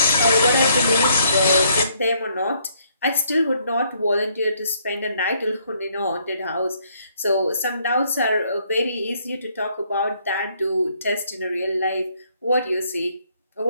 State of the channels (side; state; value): both; inverted; correlation -0.69